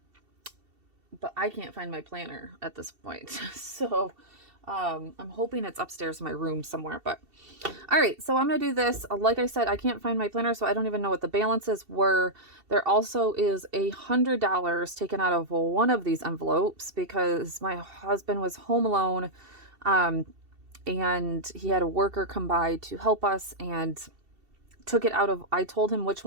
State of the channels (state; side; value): late; left; 2.7 ms